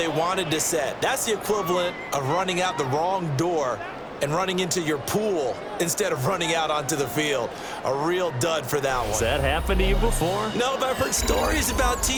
wanted to set. That's the equivalent of running out the wrong door and running into your pool instead of running out onto the field. A real dud for that one. Has that happened to you before? No, but I've heard stories about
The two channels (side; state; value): both; identical; correlation 1.00